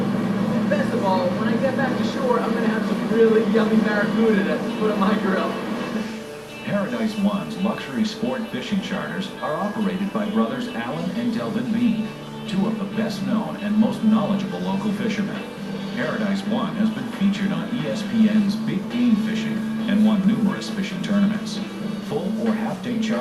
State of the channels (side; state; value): both; identical; correlation 1.00